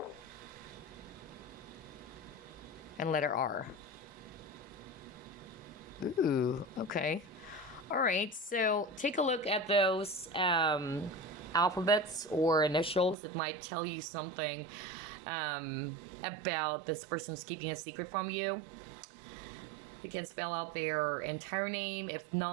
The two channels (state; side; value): drops out; left; at 13.2 s